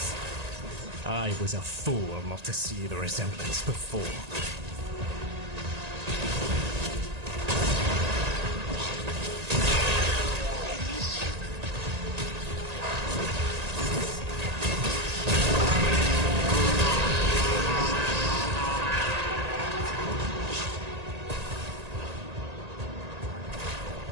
I was a fool not to see the resemblance before.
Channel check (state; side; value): late; left; 1.8 ms